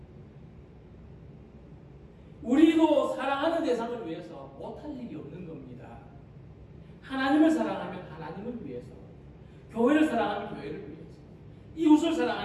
우리도 사랑하는 대상을 위해서 못할 일이 없는 겁니다. 하나님을 사랑하면 하나님을 위해서, 교회를 사랑하면 교회를 위해서, 이웃을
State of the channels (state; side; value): identical; both; correlation 1.00